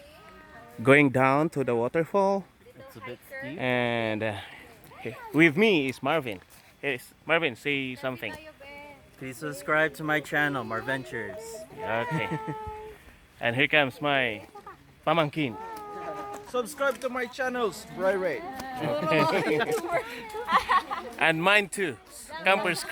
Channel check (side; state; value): both; identical; correlation 1.00